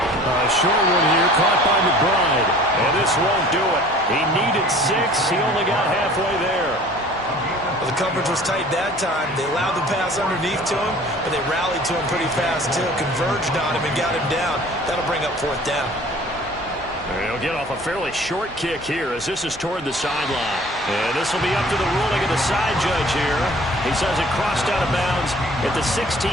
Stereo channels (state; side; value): normal; both; correlation 0.48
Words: Short one here, caught by McBride. And this won't do it. He needed 6. He only got halfway there. Well, the coverage was tight that time. They allowed the pass underneath to him, but they rallied to him pretty fast, too. Converged on him and got him down. That'll bring up 4th down. He'll get off a fairly short kick here as this is toward the sideline. And this will be up to the ruling of the side judge here. He says it crossed out of bounds at the